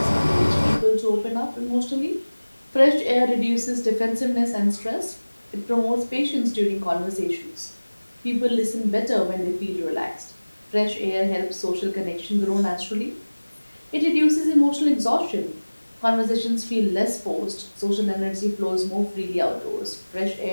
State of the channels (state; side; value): inverted; both; correlation -1.00